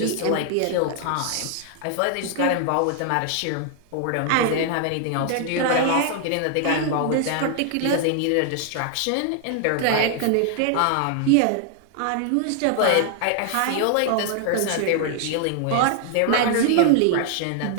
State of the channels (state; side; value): different; both; correlation 0.00